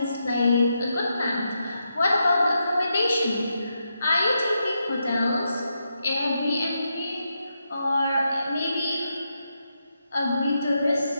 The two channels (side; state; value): both; inverted; correlation -0.83